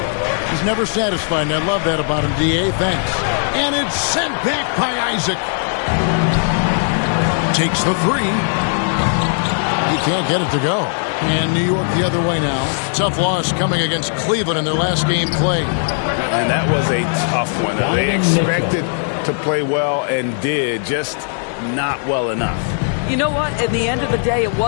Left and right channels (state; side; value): silent; right; digital silence